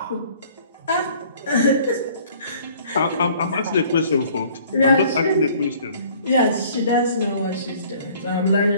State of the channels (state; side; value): inverted; both; correlation -0.54